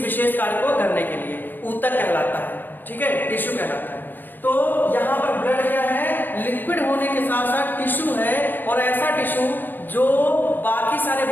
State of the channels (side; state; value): right; late; 0.091 ms